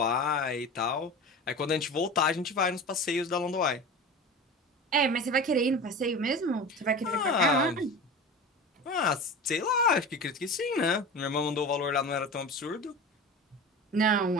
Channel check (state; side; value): normal; both; correlation 0.32